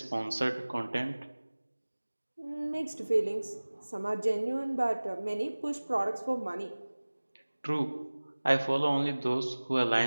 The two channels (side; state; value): both; inverted; correlation -1.00